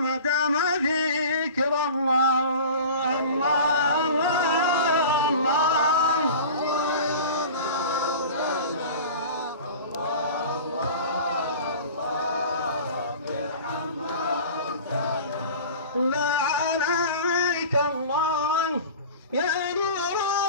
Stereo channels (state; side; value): inverted; both; correlation -0.38